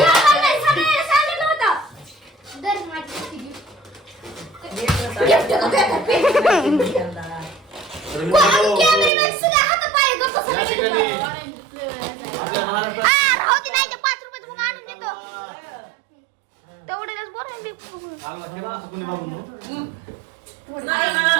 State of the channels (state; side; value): drops out; left; at 9.1 s